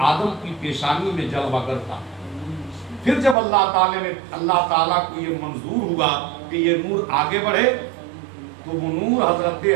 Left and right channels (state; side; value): drops out; left; at 3.4 s